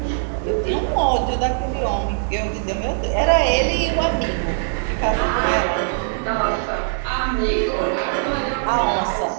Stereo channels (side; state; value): left; silent; digital silence